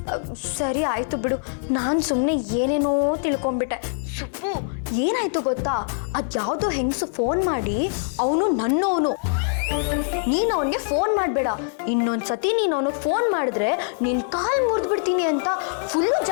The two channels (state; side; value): silent; right; 58 dB below the other